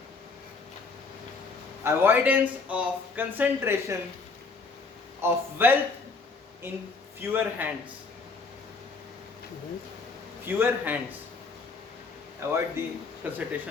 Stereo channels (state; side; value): quieter; right; 4.2 dB